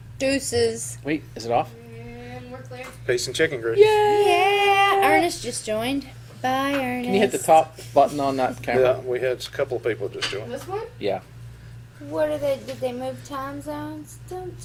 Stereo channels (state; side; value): identical; both; correlation 1.00